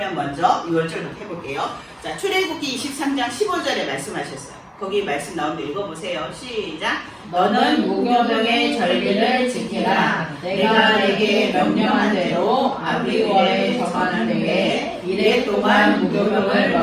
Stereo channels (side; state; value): both; identical; correlation 1.00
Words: 먼저 6월절부터 해볼게요. 자, 출애굽기 23장 15절에 말씀하셨어요. 거기 말씀 나오는데 읽어보세요. 시작. 너는 무교병의 절기를 지키라. 내가 내게 명령한 대로 아비월에 정하는 때에 이래 동안 무교병을